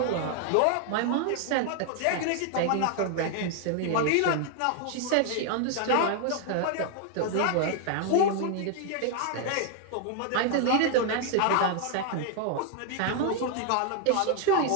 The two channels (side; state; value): both; different; correlation 0.00